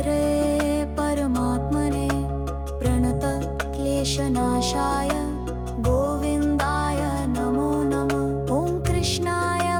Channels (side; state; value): both; identical; correlation 1.00